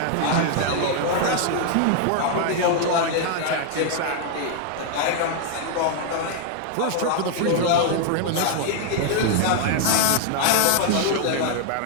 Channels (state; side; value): different; both; correlation 0.00